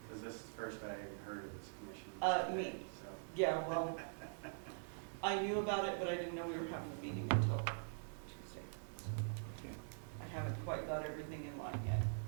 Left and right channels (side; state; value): left; silent; digital silence